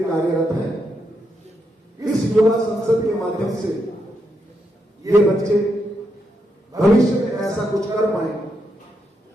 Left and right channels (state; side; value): normal; both; correlation 0.82